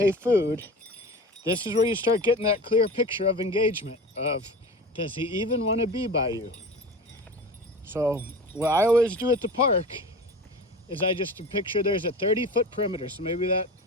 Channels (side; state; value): both; normal; correlation 0.34